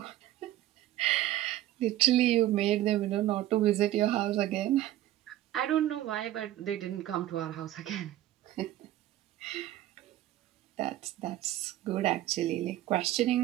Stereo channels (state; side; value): quieter; left; 14.0 dB